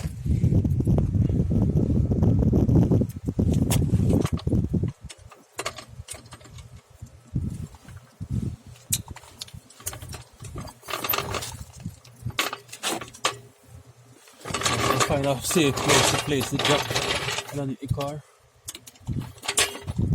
Find a safe place to place the jack underneath the car.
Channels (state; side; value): identical; both; correlation 1.00